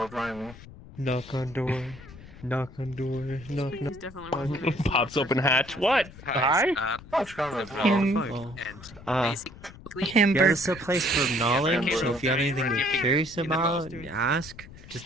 driving. Knock on door. Knock on door. Knock, knock. He's definitely one of Pops open hatch. What? Hi? That's kind of Him. Yeah, this is a place for knowledge, so if you have anything you're curious about, ask. Just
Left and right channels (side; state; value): left; noise; rumble, 18 dB below the sound